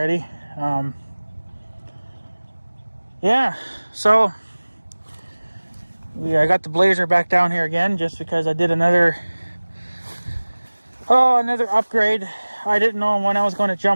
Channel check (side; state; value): both; inverted; correlation -1.00